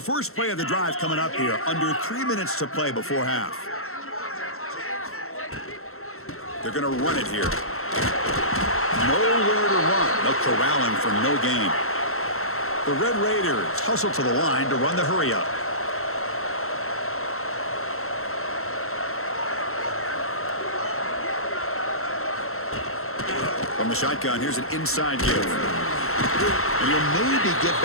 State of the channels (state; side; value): late; right; 0.62 ms